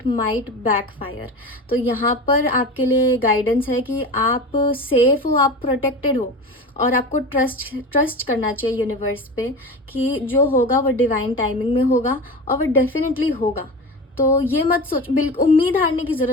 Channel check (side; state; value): both; normal; correlation 0.29